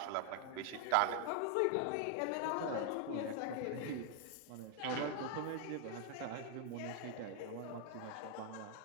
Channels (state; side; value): different; both; correlation 0.00